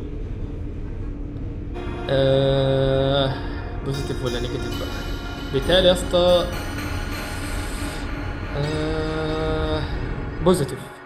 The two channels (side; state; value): both; identical; correlation 1.00